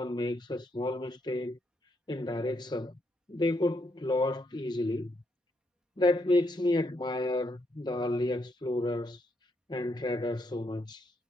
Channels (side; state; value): both; normal; correlation 0.77